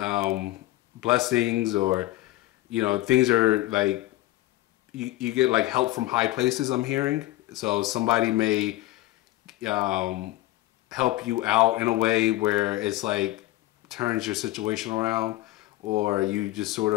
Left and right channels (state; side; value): quieter; right; 17.2 dB